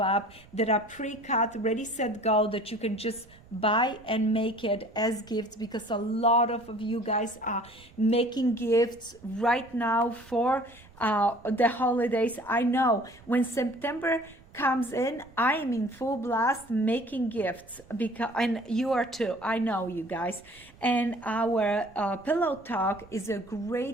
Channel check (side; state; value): right; noise; rumble, 24 dB below the sound